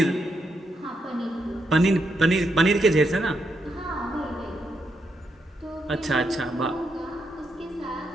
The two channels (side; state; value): both; normal; correlation 0.81